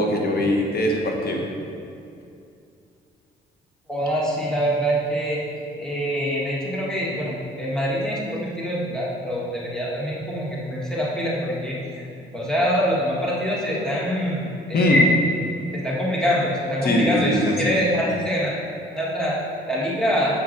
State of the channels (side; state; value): both; normal; correlation 0.53